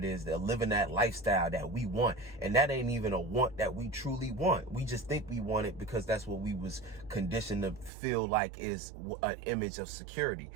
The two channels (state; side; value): drops out; left; at 7.9 s